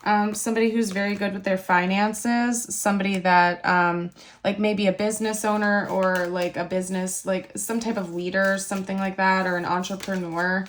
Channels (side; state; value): both; identical; correlation 1.00